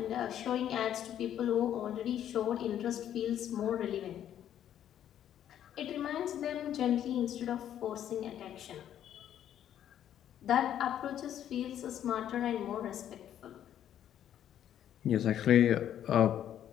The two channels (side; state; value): right; quieter; 10.6 dB